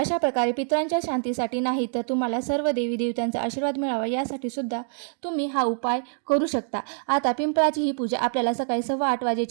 प्रकारे पितरांच्या शांतीसाठी नाही तर तुम्हाला सर्व देवी देवतांचा आशीर्वाद मिळावा यासाठी सुद्धा तुम्ही हा उपाय करू शकता. आता पिंपळाची ही पूजा आपल्याला सकाळी 8:15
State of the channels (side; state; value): left; silent; digital silence